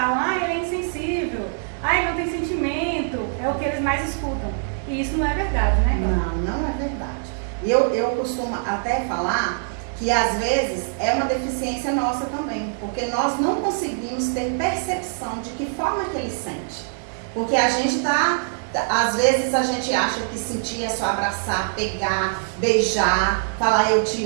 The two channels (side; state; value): left; silent; digital silence